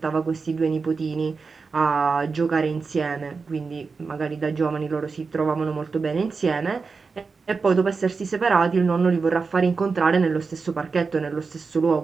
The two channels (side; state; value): left; quieter; 4.7 dB